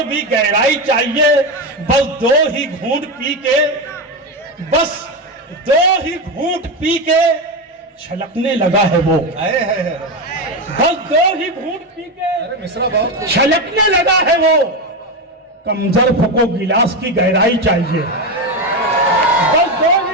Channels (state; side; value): normal; both; correlation 0.14